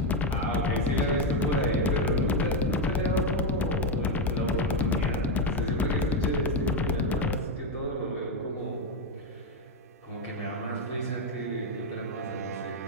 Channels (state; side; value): normal; both; correlation 0.06